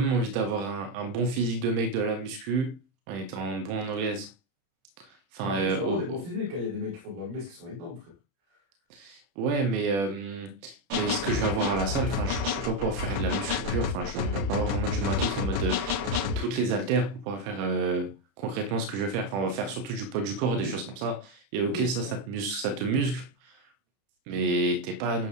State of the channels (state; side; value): late; left; 31 ms